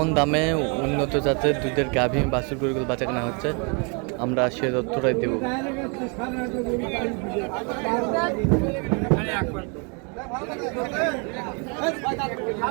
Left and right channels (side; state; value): left; quieter; 34.9 dB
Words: দামে উন্নত জাতের দুধের গাভী বাছুর গরুগুলো বাচ্চা কেনা হচ্ছে আমরা সে তথ্যটাই দেব।